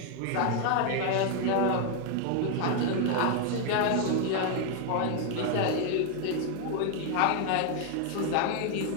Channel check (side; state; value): both; different; correlation 0.00